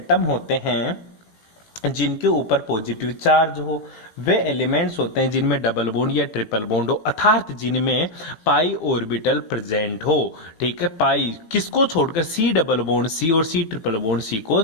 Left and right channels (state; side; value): late; right; 18 ms